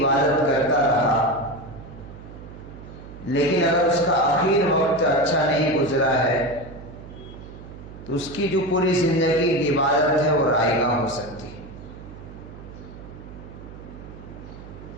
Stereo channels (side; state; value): right; noise; hum, 15 dB below the sound